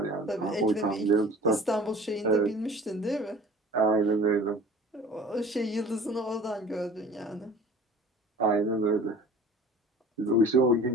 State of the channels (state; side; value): normal; both; correlation 0.45